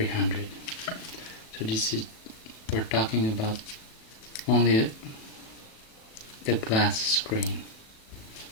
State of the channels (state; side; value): late; right; 37 ms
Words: So we're talking about only the glass screen.